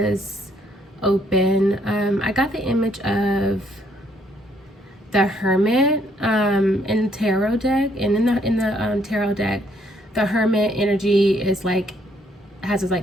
open. I got the image of the Hermit in the tarot deck, and in the tarot deck, the Hermit energy is like has his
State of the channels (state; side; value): normal; both; correlation 0.68